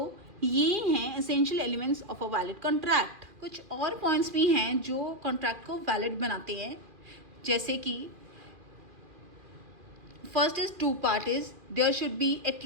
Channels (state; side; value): late; left; 2.4 ms